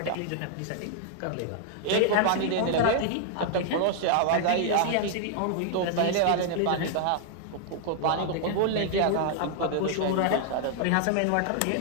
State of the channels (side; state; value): both; different; correlation 0.00